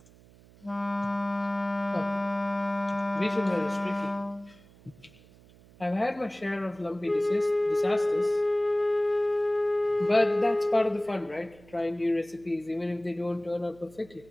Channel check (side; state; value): right; noise; hum, 25 dB below the sound